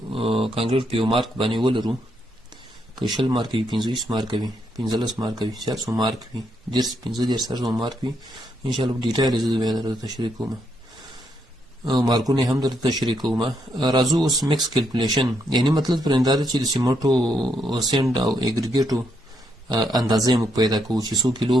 کانکریټ په یو مارک باندې ولرو، که 20 مارک وي، 25 مارک وي، 15 مارک وي، 400 مارک وي، 15 مارک وي، انشاءالله په ډیټیل زه بیا درته تشریح کوم، مارکونه هم درته تشریح کوم. راځو اوس مکس کیلکولیشن، یعنی مطلب پرنده ده چې د سیمنټو سینډ او اګریګیټو اندازې موږ پیدا کوو چې 100 کیلو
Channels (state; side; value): normal; both; correlation 0.77